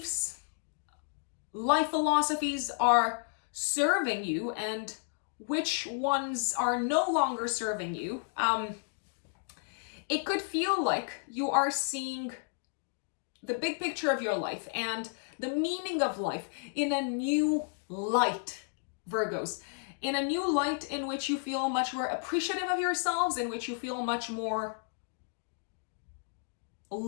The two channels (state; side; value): silent; right; digital silence